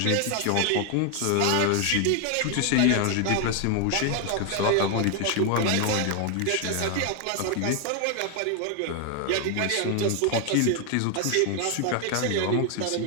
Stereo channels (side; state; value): both; different; correlation 0.00